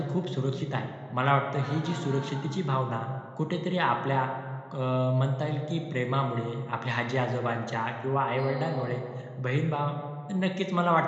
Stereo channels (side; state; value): both; identical; correlation 1.00